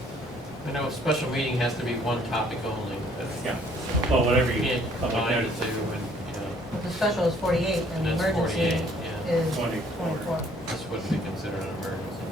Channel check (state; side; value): normal; both; correlation 0.61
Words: I know a special meeting has to be one topic only, but. Yeah. Well, whatever you Can't public combine the notice. two, and, you know, the special is 48 and the That's emergency 48, yeah. is 24. 24. this wouldn't be considered an emergency.